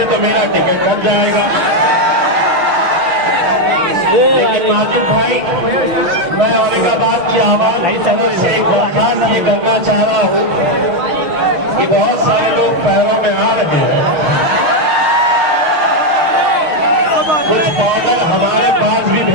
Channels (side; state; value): left; late; 6.2 ms